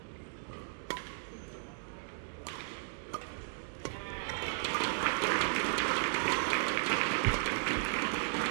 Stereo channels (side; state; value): left; silent; digital silence